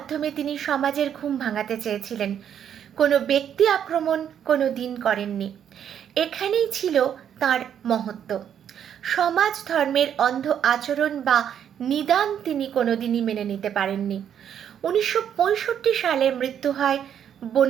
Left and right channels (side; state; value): left; quieter; 9.1 dB